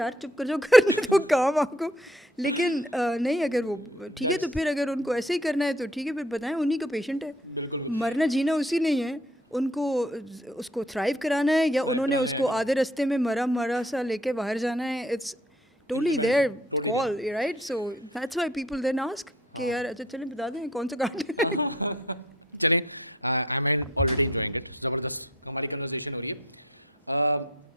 चुप कर जाओ, करने तो काम आपको. लेकिन नहीं, अगर वो ठीक है तो फिर अगर उनको ऐसे ही करना है तो ठीक है, फिर बताएं उन्हीं का पेशेंट है, मरना जीना उसी नहीं है. उनको उसको थ्राइव कराना है या उन्होंने उसको आधे रास्ते में मरा सा लेके बाहर जाना है. It's totally their call, right. So that's why people then ask कि यार अच्छा चलें बता दें कौन सा काट है. हमारी कन्वर्सेशन हो रही है.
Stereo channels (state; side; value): normal; both; correlation 0.55